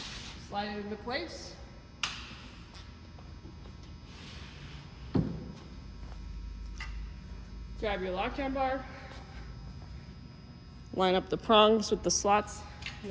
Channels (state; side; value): identical; both; correlation 1.00